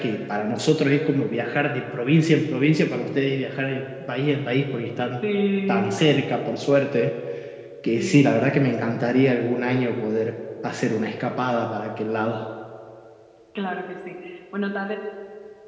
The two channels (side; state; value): both; identical; correlation 1.00